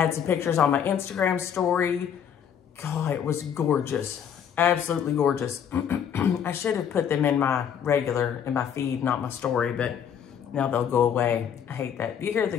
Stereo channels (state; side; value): quieter; right; 8.4 dB